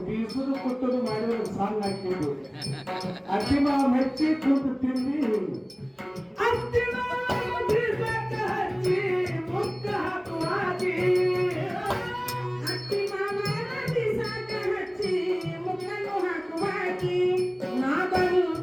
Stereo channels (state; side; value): identical; both; correlation 1.00